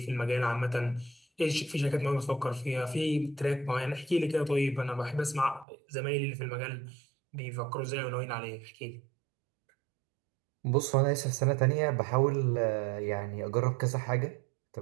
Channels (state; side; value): drops out; left; at 5.7 s